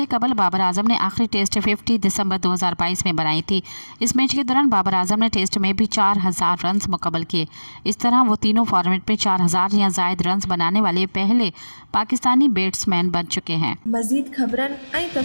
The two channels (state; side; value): inverted; both; correlation -1.00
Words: कबल बाबर आजम ने आखिरी टेस्ट 50 दिसंबर 2022 में बनाई थी। इस मैच के दौरान बाबर आजम ने टेस्ट में भी 4000 रन मुकम्मल किए। इस तरह वो तीनों फॉर्मेट में 4000 या जायद रन बनाने वाले पहले पाकिस्तानी बैट्समैन बन चुके हैं। मज़ीद ख़बरनि ऐं